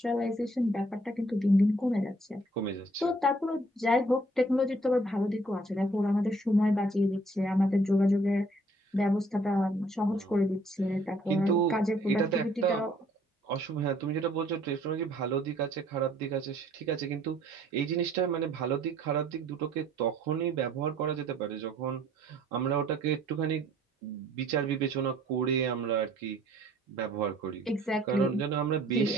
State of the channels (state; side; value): normal; both; correlation 0.60